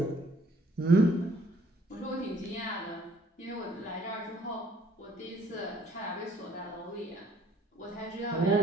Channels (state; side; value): normal; both; correlation 0.60